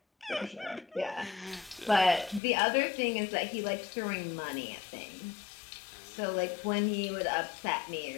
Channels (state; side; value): drops out; right; at 2.4 s